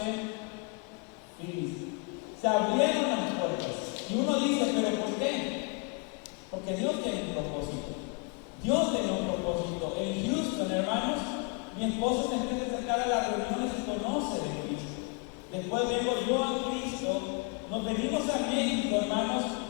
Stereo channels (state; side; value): quieter; right; 30.3 dB